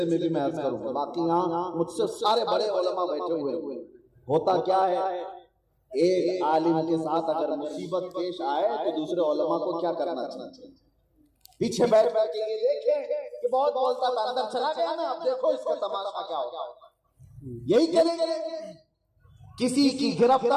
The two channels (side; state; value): both; identical; correlation 1.00